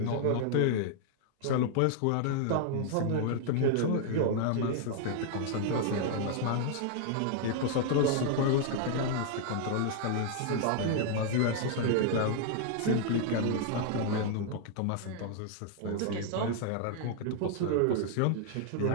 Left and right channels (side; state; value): both; different; correlation 0.00